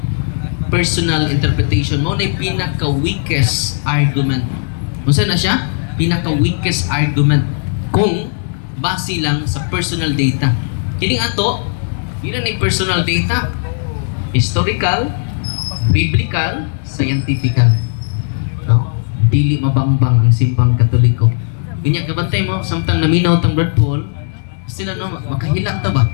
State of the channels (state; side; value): silent; right; digital silence